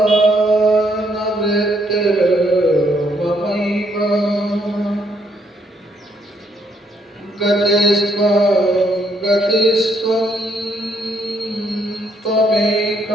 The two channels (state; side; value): normal; both; correlation 0.71